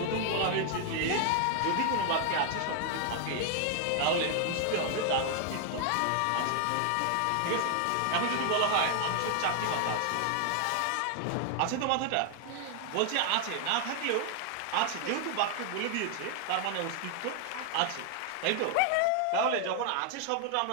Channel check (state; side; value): different; both; correlation 0.00